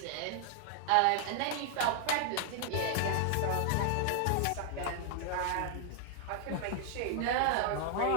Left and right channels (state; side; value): different; both; correlation 0.00